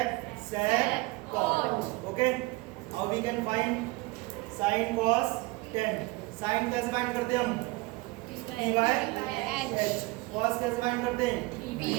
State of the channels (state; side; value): quieter; left; 23.0 dB